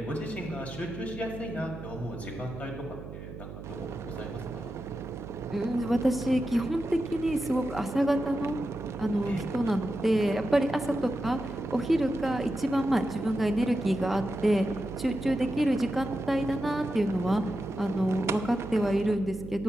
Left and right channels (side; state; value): right; noise; hum, 11 dB below the sound